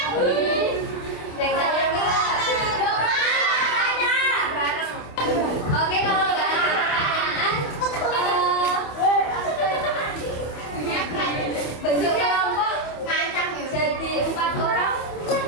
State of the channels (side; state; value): right; late; 28 ms